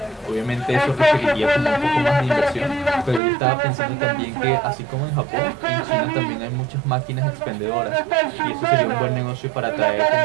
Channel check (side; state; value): left; drops out; at 3.2 s